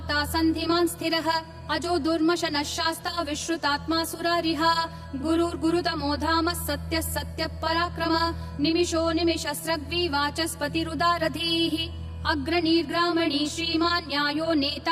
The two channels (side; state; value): both; identical; correlation 1.00